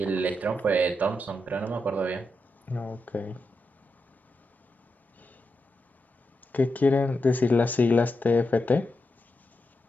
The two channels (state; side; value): normal; both; correlation 0.86